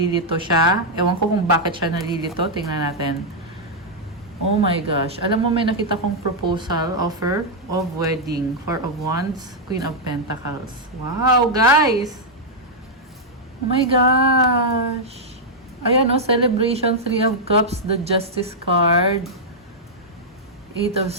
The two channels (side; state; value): both; normal; correlation -0.05